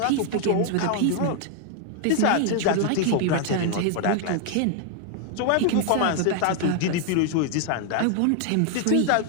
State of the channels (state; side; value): different; both; correlation 0.00